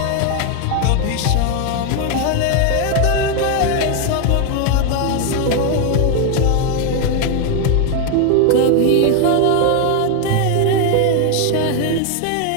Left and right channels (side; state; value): both; different; correlation 0.01